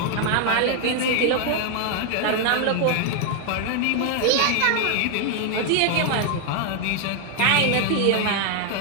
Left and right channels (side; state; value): both; different; correlation 0.00